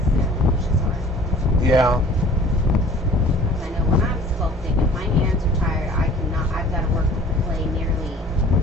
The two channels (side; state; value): both; normal; correlation 0.48